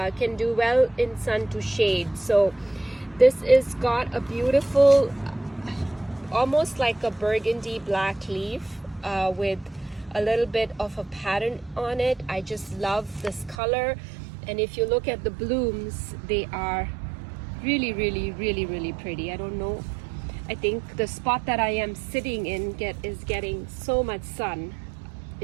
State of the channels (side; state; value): left; drops out; at 13.6 s